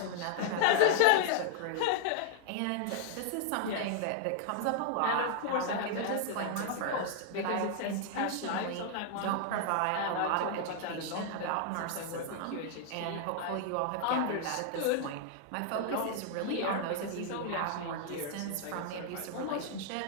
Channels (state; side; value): different; both; correlation -0.01